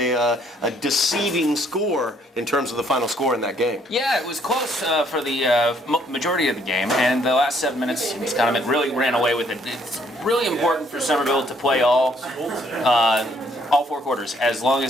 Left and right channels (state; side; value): normal; both; correlation 0.66